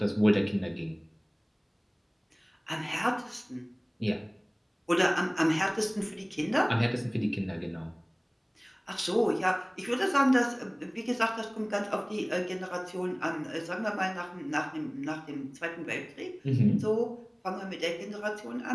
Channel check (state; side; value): identical; both; correlation 1.00